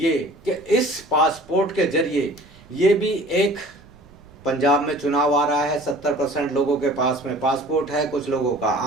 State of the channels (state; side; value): noise; right; rumble, 26 dB below the sound